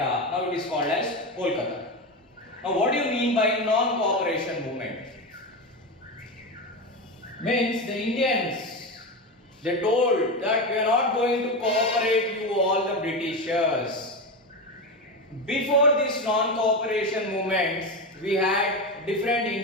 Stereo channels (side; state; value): both; normal; correlation 0.17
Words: Now it is called as Kolkata. Now what do you mean by non-cooperation movement? Means the Indians, they told that we are not going to cooperate you all the Britishers. Before this non-cooperation movements, we had different